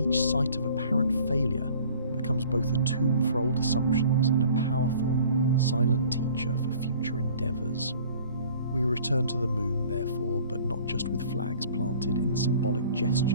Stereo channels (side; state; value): both; inverted; correlation -0.50